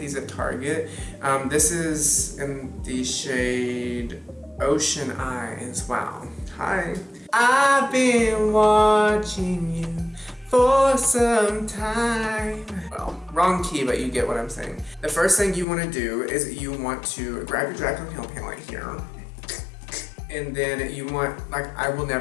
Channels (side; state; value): right; drops out; at 15.7 s